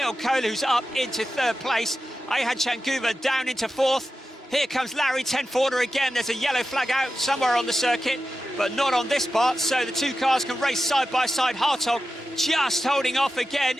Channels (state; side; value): normal; both; correlation 0.92